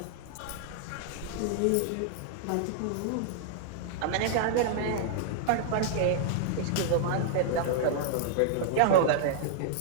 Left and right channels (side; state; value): both; different; correlation -0.01